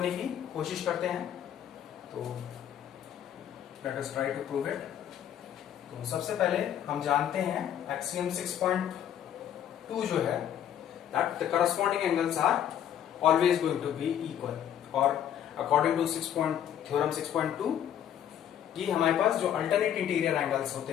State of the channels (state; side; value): quieter; right; 10.1 dB